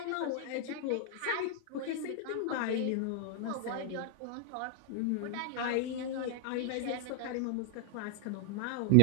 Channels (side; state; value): both; different; correlation 0.00